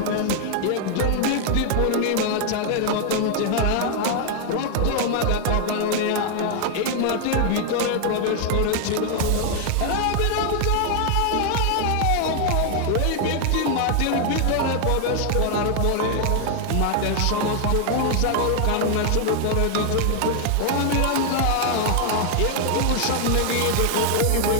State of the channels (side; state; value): both; different; correlation 0.00